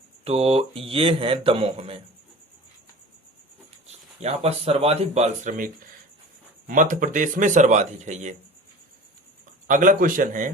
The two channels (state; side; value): normal; both; correlation 0.38